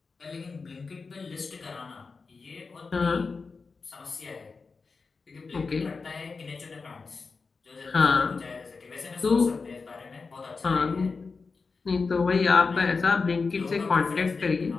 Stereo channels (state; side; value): quieter; right; 4.5 dB